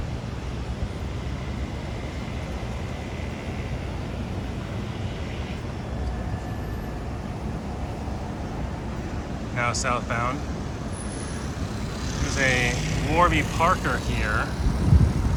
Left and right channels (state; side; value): identical; both; correlation 1.00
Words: Now southbound. There's a Warby Parker here